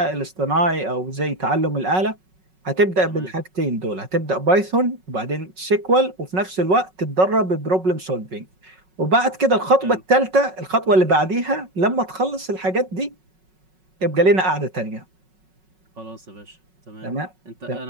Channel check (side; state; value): left; late; 5.4 ms